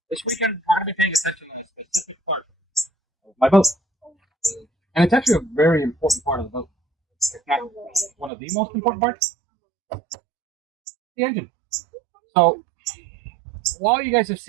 This weekend, I'm going to be paying attention to a specific part of my boat. And it's actually a very important part of the boat. It's not one of the most important parts. The engine. So, while you guys have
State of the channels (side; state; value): left; drops out; at 8.3 s